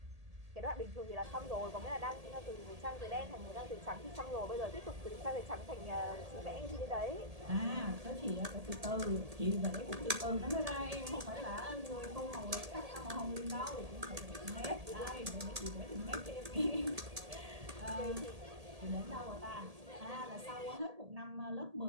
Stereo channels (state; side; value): late; left; 1.8 ms